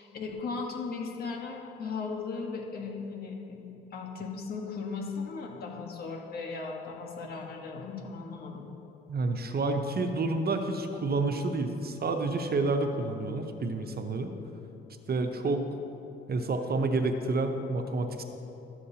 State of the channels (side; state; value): both; normal; correlation 0.53